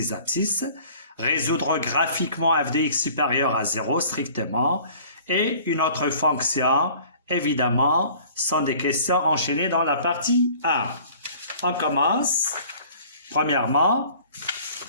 abscisses. Résoudre graphiquement f de x supérieur à 0 strictement. Et une autre fonction, évidemment, sont des questions enchaînées dans la partie 1. On commence. Premièrement,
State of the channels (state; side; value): inverted; both; correlation -0.50